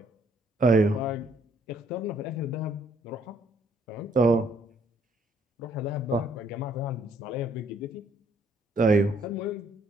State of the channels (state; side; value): normal; both; correlation 0.66